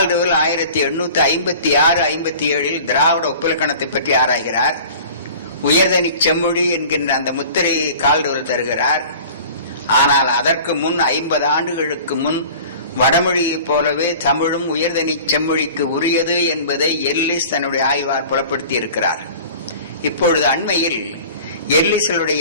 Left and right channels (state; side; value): inverted; both; correlation -0.43